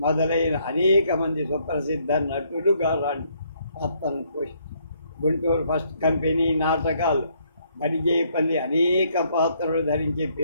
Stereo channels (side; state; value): both; inverted; correlation -0.69